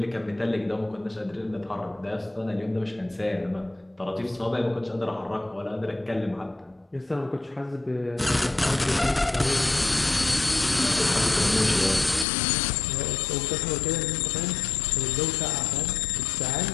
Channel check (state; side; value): drops out; right; at 12.2 s